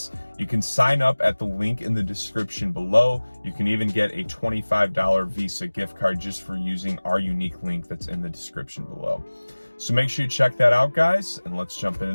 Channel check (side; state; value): both; inverted; correlation -1.00